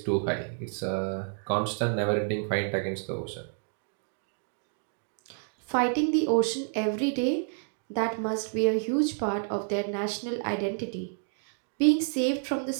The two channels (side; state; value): left; silent; 58 dB below the other